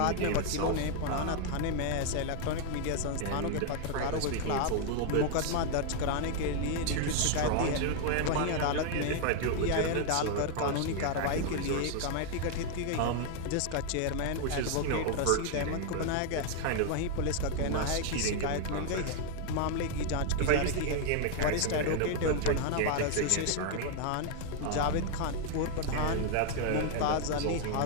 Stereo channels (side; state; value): both; different; correlation 0.00